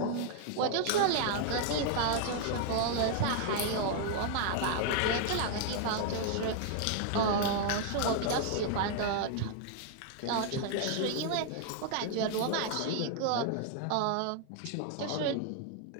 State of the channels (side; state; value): both; different; correlation 0.00